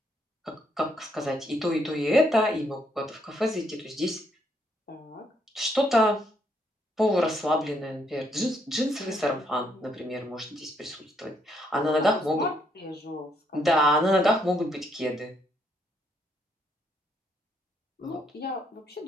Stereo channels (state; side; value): normal; both; correlation 0.73